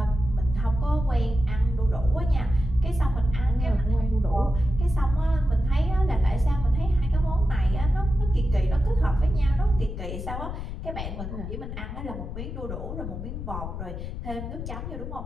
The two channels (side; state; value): left; noise; rumble, 7 dB below the sound